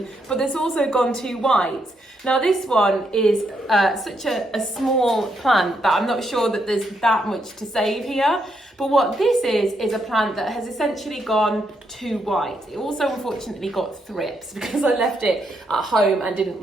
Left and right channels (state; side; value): normal; both; correlation 0.78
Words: but that's also gone too white. Now this one is such a small plant that I'm not sure that there's that much to save here. But what this is a plant that has essentially gone too white. It also unfortunately got thrips because I left it at home and didn't